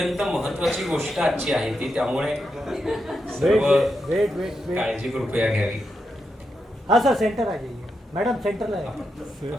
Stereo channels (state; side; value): normal; both; correlation 0.85